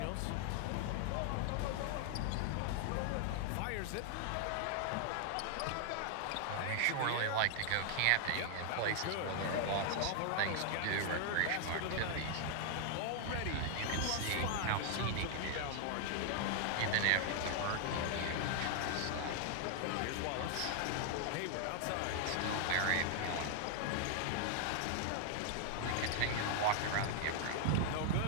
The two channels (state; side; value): different; both; correlation 0.00